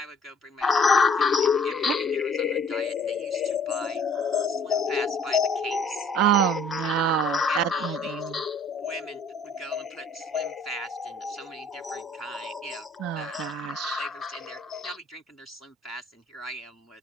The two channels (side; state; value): both; normal; correlation 0.56